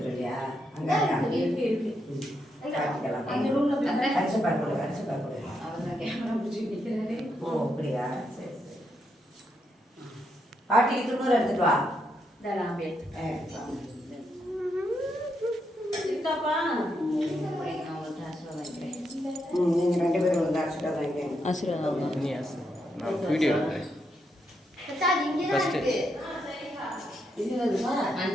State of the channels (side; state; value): both; normal; correlation 0.80